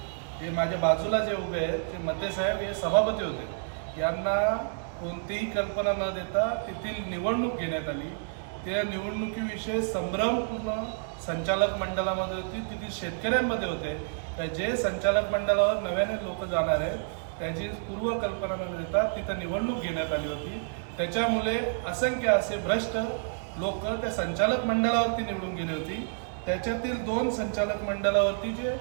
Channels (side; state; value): left; silent; 58 dB below the other